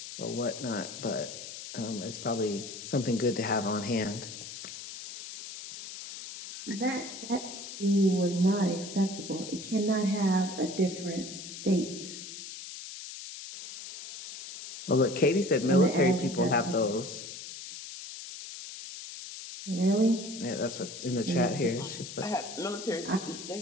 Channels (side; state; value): left; noise; hiss, 11 dB below the sound